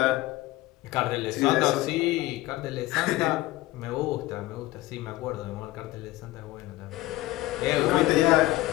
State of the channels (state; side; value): quieter; right; 17.8 dB